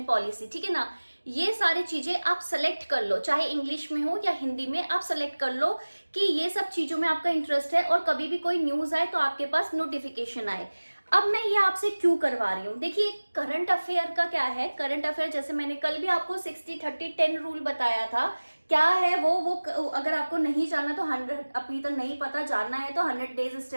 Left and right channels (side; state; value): both; inverted; correlation -1.00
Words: पॉलिसी, ठीक है ना। ये सारी चीजें आप सेलेक्ट कर लो, चाहे इंग्लिश में हो या हिंदी में, आप सेलेक्ट कर लो कि ये सब चीजों में आपका इंटरेस्ट है, और कभी भी कोई न्यूज आए तो आपके पास नोटिफिकेशन आए। अब मैं ये आपसे क्यों करवा रही हूँ, देखिए करंट अफेयर का क्या है। करंट अफेयर जैसे मैंने कल भी आपको 60-30-10 रूल बताया था, क्या है वो अगर आपको नहीं जानना तो 100 अभी तक नहीं पता, जानना है तो 100 डेज